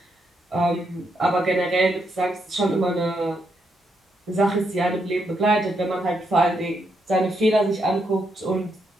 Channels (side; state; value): both; normal; correlation 0.79